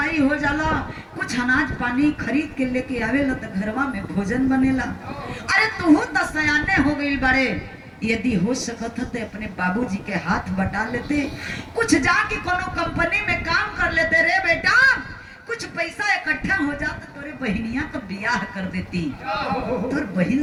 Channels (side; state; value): both; identical; correlation 1.00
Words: हो जाला कुछ अनाज पानी खरीद के लेके आवेला तो घरवा में भोजन बनेला। अरे तू तो सयाने हो गई बड़े, यदि हो सकत तो अपने बाबूजी के हाथ बटा लेते, कुछ जाके कोनो कंपनी में काम कर लेते रे बेटा, कुछ पैसा इकट्ठा हो जाता तोरे बहनिया का ब्याह कर देती। तोर बहन